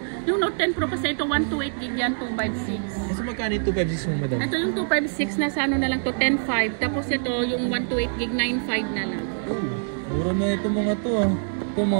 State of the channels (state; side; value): silent; left; digital silence